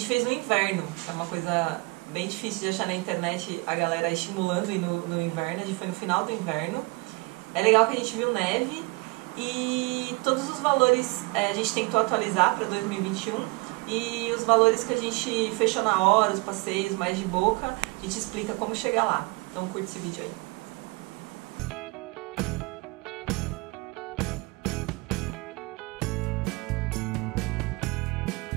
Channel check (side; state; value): left; quieter; 25.8 dB